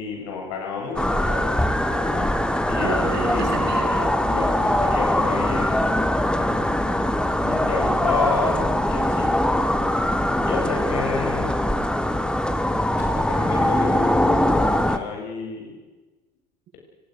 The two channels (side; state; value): both; normal; correlation 0.85